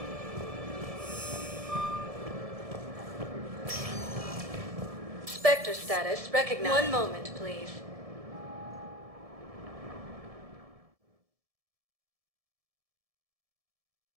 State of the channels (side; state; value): left; late; 1.7 ms